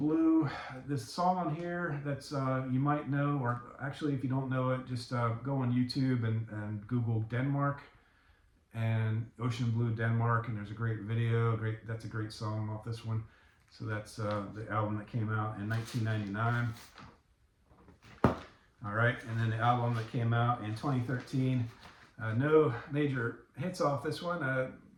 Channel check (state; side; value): identical; both; correlation 1.00